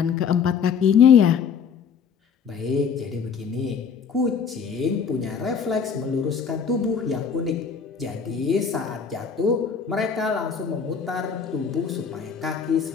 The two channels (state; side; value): quieter; right; 6.5 dB